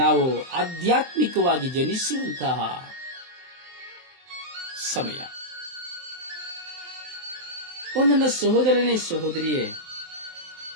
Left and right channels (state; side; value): late; left; 23 ms